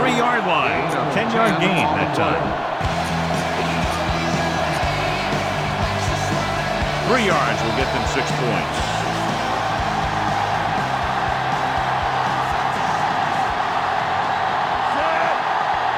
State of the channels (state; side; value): identical; both; correlation 1.00